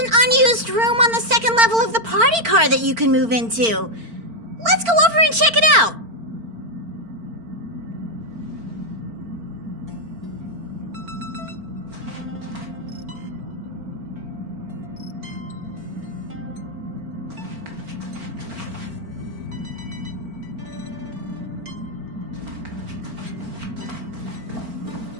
unused room on the second level of the party car that you can move into. Let's go over and check it out.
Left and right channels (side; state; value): left; late; 4.4 ms